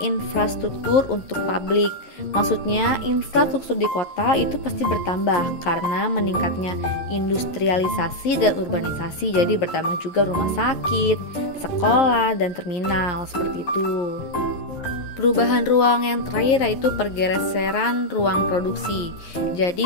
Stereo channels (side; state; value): right; late; 11 ms